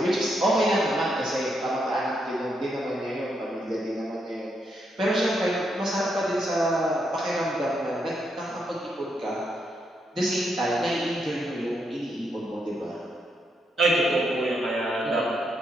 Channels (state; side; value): normal; both; correlation 0.79